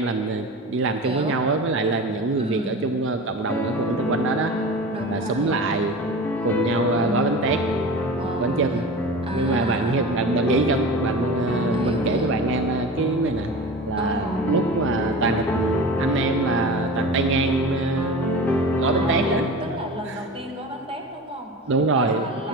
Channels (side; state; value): both; normal; correlation 0.33